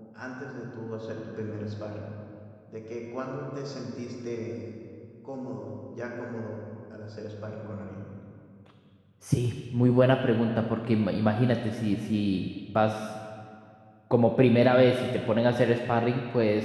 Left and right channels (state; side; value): identical; both; correlation 1.00